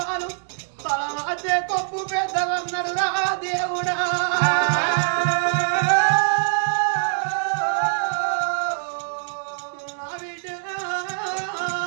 తల మధ్య కొప్పు పెద్దలన్నారు రా దేవుడా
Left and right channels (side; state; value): left; silent; 63 dB below the other